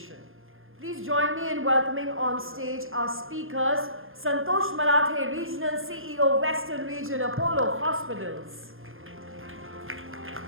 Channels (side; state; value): left; late; 0.60 ms